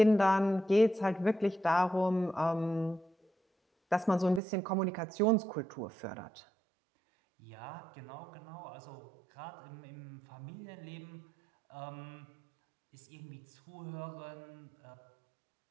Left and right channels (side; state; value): left; drops out; at 4.4 s